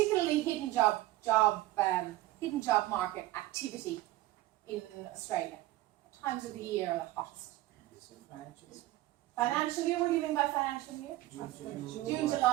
hidden job market activity in Australia? What times of the year are the hottest? Financial year? What do you mean by financial year? June,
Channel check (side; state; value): left; quieter; 16.9 dB